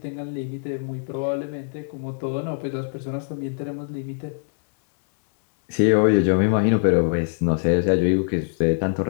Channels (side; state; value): right; silent; 63 dB below the other